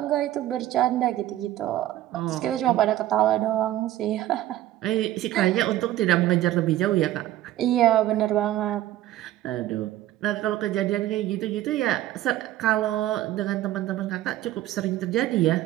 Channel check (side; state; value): left; quieter; 14.0 dB